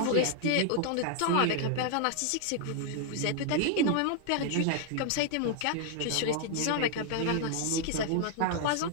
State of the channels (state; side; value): different; both; correlation 0.00